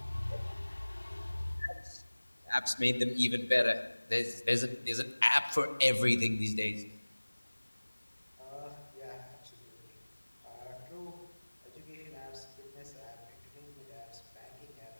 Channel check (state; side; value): inverted; both; correlation -1.00